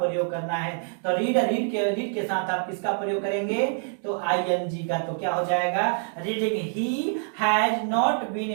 करना है। तो रीड के साथ आप किसका प्रयोग करेंगे, तो आईएनजी का। तो क्या हो जाएगा, reading, he has not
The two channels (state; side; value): silent; left; 61 dB below the other